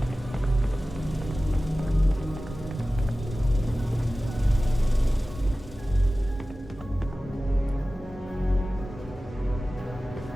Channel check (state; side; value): normal; both; correlation 0.96